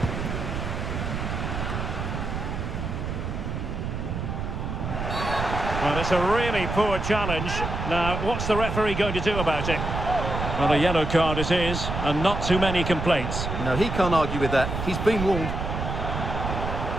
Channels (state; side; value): noise; right; rumble, 4 dB below the sound